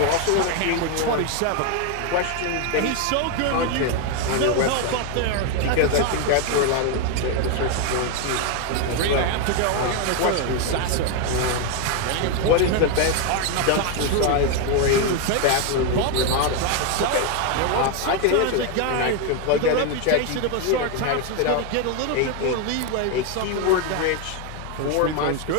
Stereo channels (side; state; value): both; different; correlation 0.01